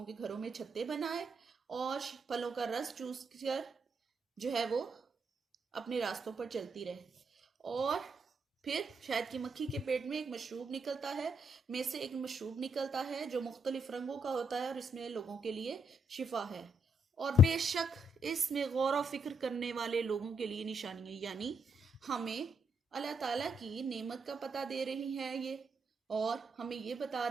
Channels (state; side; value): normal; both; correlation 0.76